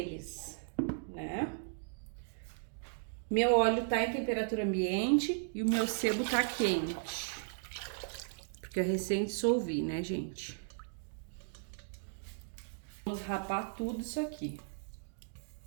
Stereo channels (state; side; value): silent; left; digital silence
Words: né? Meu óleo tá em temperatura ambiente e o meu sebo tá quente, porque eu recém dissolvi, né, gente? Vamos rapar tudo isso aqui.